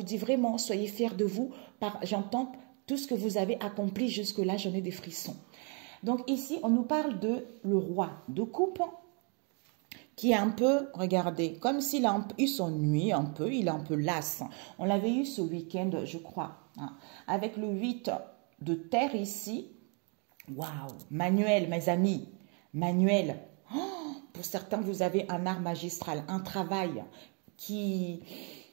dit vraiment, soyez fiers de vous. J'entends tout ce que vous avez accompli jusque-là, j'en ai des frissons. Donc, ici, on nous parle de le roi de coupe, qui est un peu, regardez, comme s'il s'ennuie un peu, il est un peu las. On l'avait eu ce week-end, je crois, hein, avec le 8 de terre ici. Waouh, manuel, mes amis, manuel. Oh, pour certains, vous avez un art magistral, un travail qui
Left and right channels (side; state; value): left; quieter; 37.2 dB